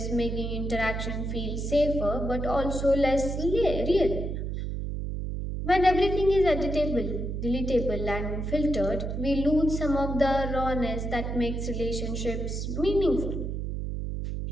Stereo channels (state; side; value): noise; right; hum, 3 dB below the sound